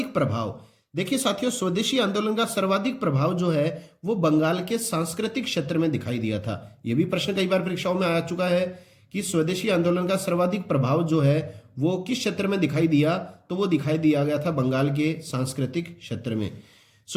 प्रभाव। देखिए साथियों, स्वदेशी आंदोलन का सर्वाधिक प्रभाव जो है वो बंगाल के सांस्कृतिक क्षेत्र में दिखाई दिया था। यह भी प्रश्न कई बार परीक्षाओं में आ चुका है कि स्वदेशी आंदोलन का सर्वाधिक प्रभाव जो है वो किस क्षेत्र में दिखाई दिया? तो वो दिखाई दिया गया था बंगाल के सांस्कृतिक क्षेत्र में।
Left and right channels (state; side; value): identical; both; correlation 1.00